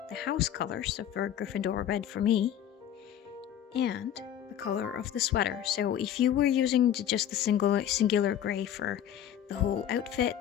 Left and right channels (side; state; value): right; quieter; 10.3 dB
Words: the house color, so for Gryffindor red for me, and the color of the sweater. So if you were using just the singular gray for the whole outfit,